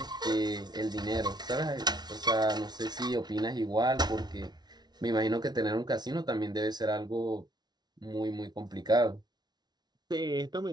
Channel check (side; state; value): left; late; 0.20 ms